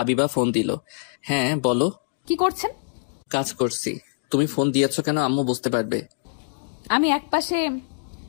ফোন দিল। হ্যাঁ বলো। কি করছেন? কাজ করছি। তুমি ফোন দিয়েছো কেন আম্মু বুঝতে পারবে। আমি একপাশে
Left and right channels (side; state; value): right; silent; digital silence